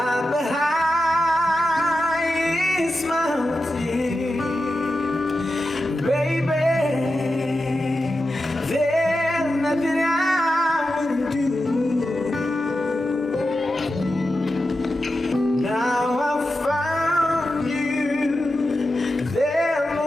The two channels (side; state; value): both; normal; correlation 0.91